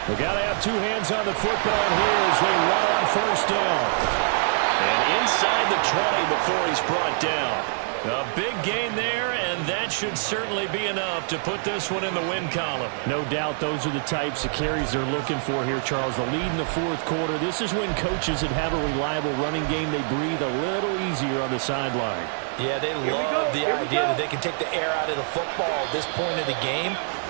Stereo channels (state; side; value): silent; left; digital silence